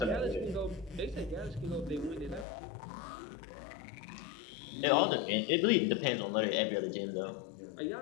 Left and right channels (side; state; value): right; drops out; at 2.5 s